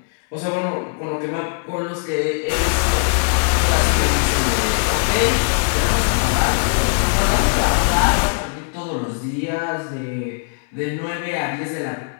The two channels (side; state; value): right; silent; 66 dB below the other